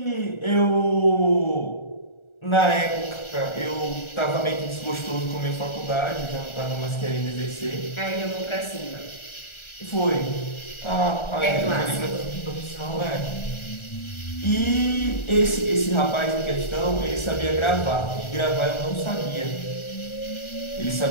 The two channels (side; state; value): right; late; 1.4 ms